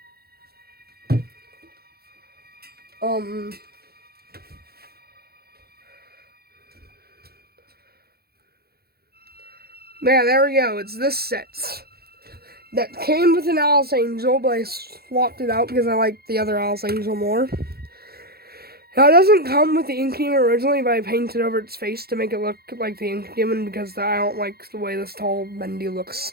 Yeah, there we go. It's this set. That came with an Alice Angel, but I swapped it out because I like the other Alice Angel more. Now, it doesn't come with the ink demon originally, but I painted over its face to make it look like the ink demon because I don't like the way this tall Bendy looks.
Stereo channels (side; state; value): left; late; 0.45 ms